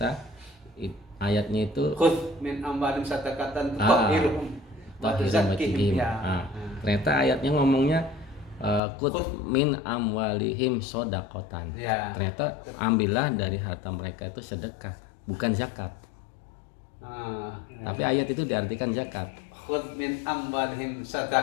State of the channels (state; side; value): drops out; right; at 8.8 s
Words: ayatnya itu Khudh min amwalim sadaqatan tutahhiruhum wa tuzakkihim. Ternyata ayatnya ngomongnya khudh min amwalihim shadaqatan. Ya. Ternyata ambillah dari harta mereka itu sedekah, bukan zakat. Tapi ayat itu diartikan zakat. Khudh min amwalihim